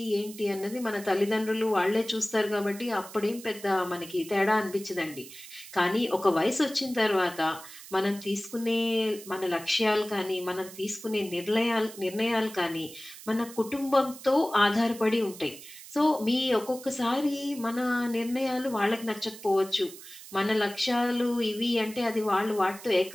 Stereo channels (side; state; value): right; noise; hiss, 16 dB below the sound